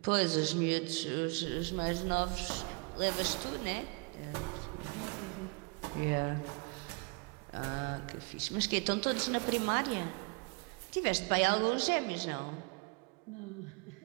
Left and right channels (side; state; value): left; quieter; 31.5 dB